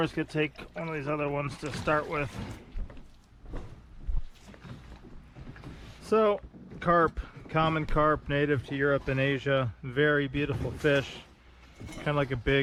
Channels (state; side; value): identical; both; correlation 1.00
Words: just going to take one of these other ones to start with. So, carp. Common carp, native to Europe and Asia. Very beautiful fish, kind of like a